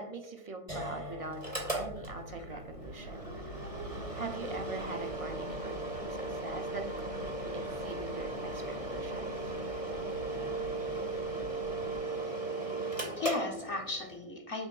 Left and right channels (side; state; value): right; late; 1.6 ms